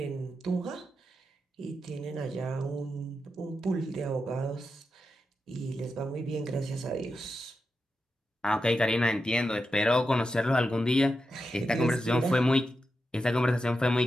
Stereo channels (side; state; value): both; normal; correlation 0.88